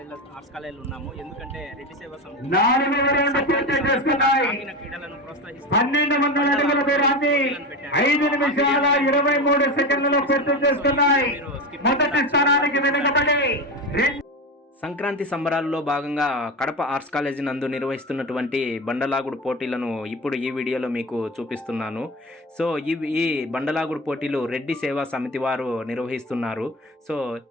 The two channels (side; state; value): both; normal; correlation 0.22